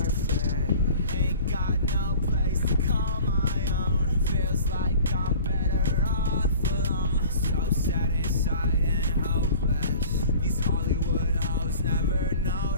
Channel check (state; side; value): inverted; both; correlation -0.44